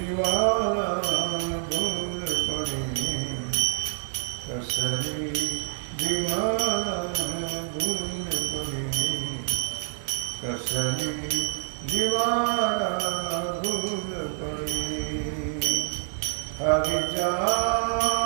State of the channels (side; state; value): left; silent; digital silence